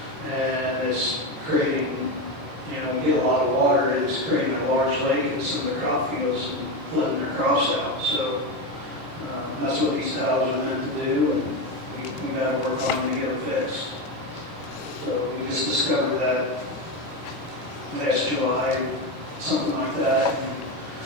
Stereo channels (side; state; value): both; normal; correlation 0.15